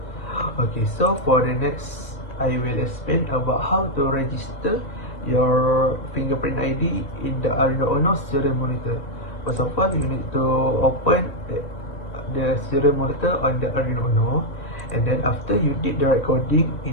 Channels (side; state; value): right; late; 1.8 ms